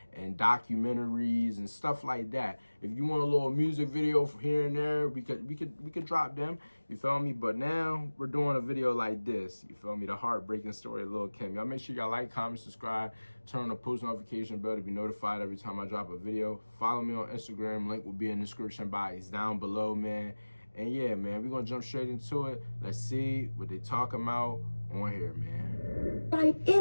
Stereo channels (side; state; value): both; inverted; correlation -1.00